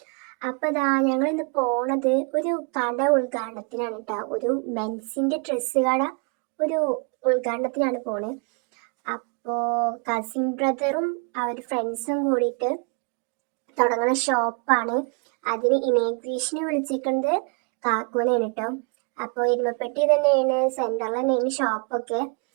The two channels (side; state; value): left; quieter; 35.9 dB